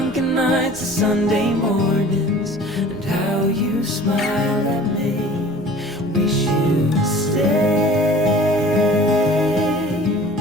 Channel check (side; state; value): both; normal; correlation 0.45